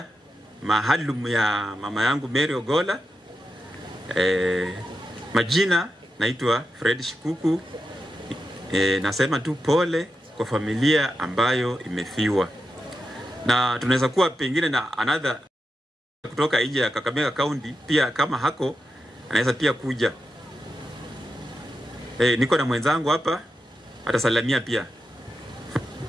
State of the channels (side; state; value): both; normal; correlation 0.88